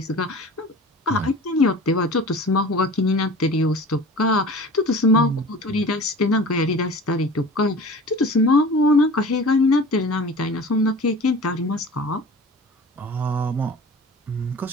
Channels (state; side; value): normal; both; correlation 0.39